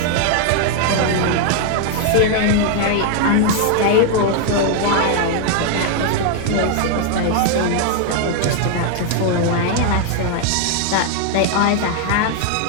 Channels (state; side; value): different; both; correlation 0.00